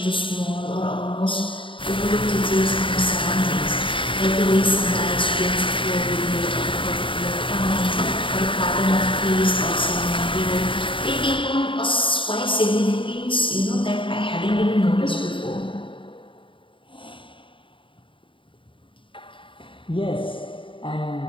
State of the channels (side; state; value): right; late; 0.25 ms